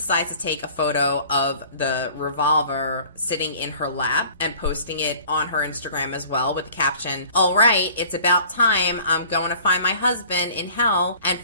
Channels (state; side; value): inverted; both; correlation -0.49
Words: to take a photo of the revolver sitting in her lap and posting it on her Instagram as well with the caption, all right, it's about time. I'm going to find my husband in hell and